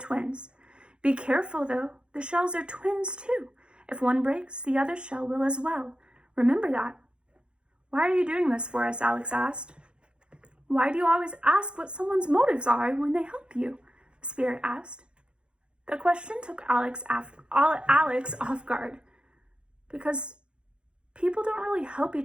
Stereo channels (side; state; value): left; late; 0.054 ms